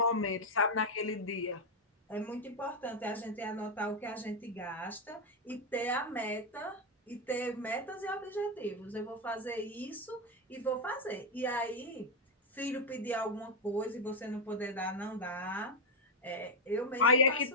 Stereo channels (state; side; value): normal; both; correlation 0.03